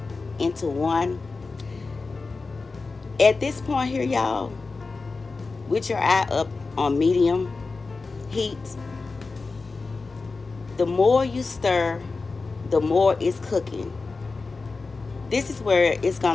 into one. At this point here, y'all, with your eye up on medium heat, the more you stir, the more it's cooking. This is where it's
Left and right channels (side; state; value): right; quieter; 4.0 dB